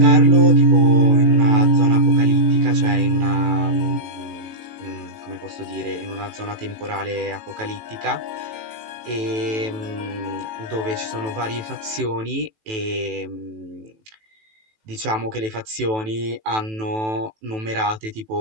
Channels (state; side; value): late; left; 18 ms